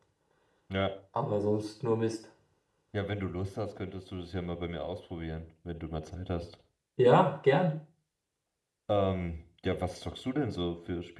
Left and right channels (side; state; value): both; identical; correlation 1.00